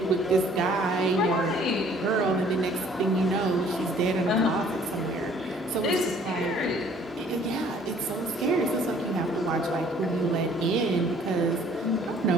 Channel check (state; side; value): normal; both; correlation 0.57